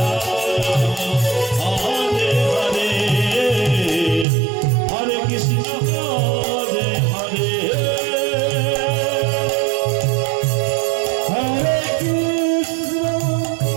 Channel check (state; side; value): drops out; left; at 4.2 s